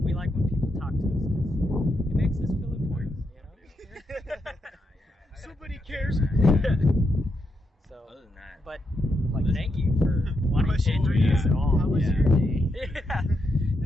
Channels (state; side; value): normal; both; correlation 0.82